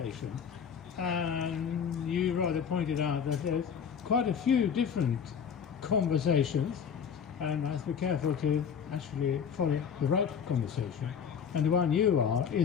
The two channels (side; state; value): right; quieter; 7.3 dB